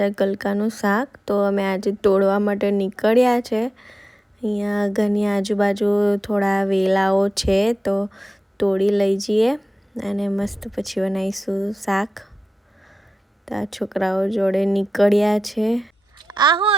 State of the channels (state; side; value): normal; both; correlation 0.93